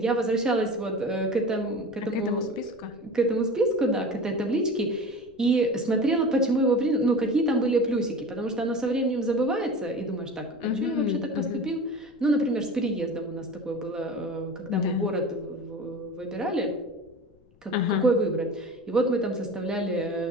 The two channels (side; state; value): left; noise; rumble, 29 dB below the sound